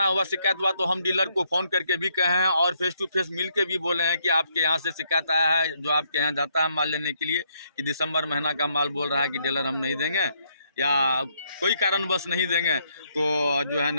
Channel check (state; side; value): inverted; both; correlation -0.73